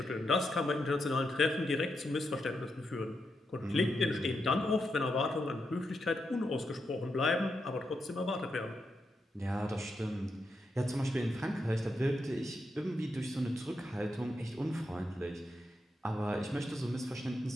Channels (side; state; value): both; normal; correlation 0.84